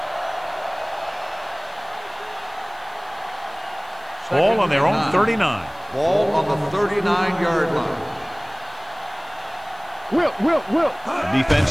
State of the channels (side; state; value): left; noise; hiss, 27 dB below the sound